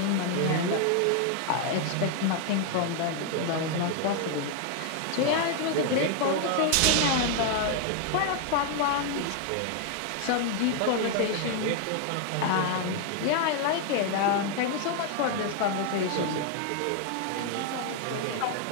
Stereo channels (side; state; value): both; different; correlation 0.00